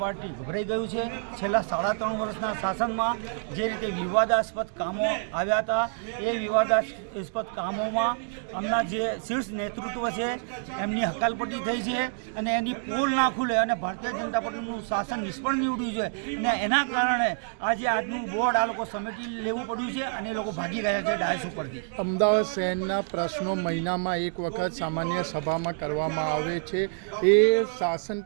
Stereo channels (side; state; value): left; silent; 60 dB below the other